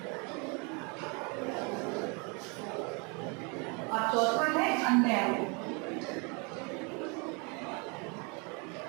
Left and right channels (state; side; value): quieter; left; 32.2 dB